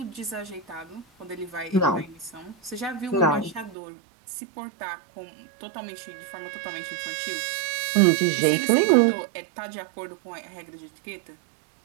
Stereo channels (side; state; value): left; drops out; at 3.8 s